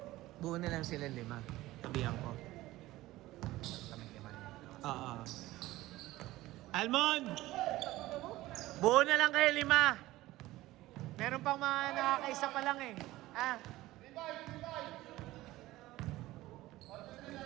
Buo na lang sila 5. Sabihan ko. Oo. Almond! Buo na lang kayo 5. Meron pang mga nakakaisa pa lang eh. Ah.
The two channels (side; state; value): left; quieter; 17.2 dB